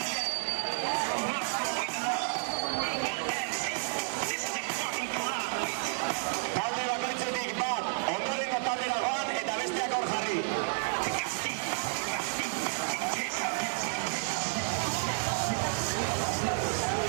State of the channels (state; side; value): silent; left; digital silence